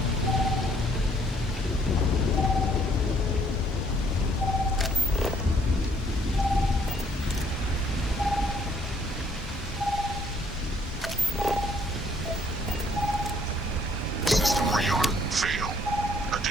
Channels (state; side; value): normal; both; correlation 0.64